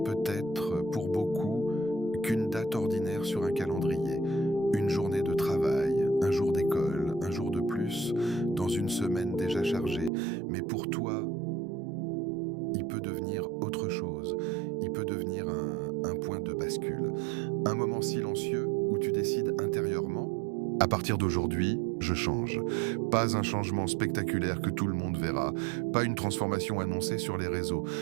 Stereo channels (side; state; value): left; drops out; at 10.1 s